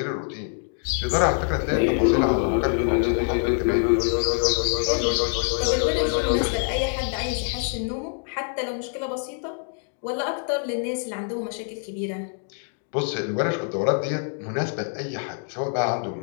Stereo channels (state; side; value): silent; right; 56 dB below the other